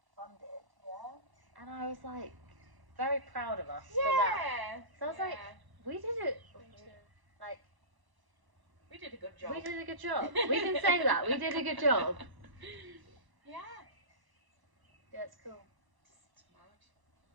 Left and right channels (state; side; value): late; left; 1.0 ms